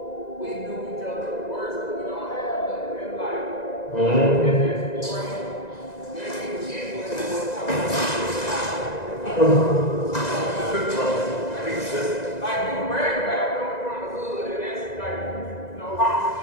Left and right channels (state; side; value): late; right; 2.0 ms